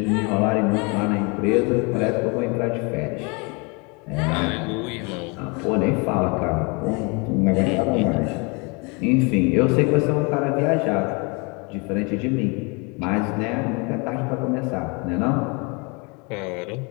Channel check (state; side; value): quieter; right; 30.7 dB